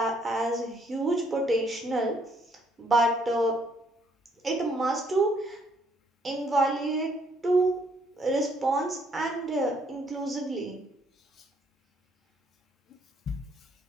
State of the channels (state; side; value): normal; both; correlation 0.68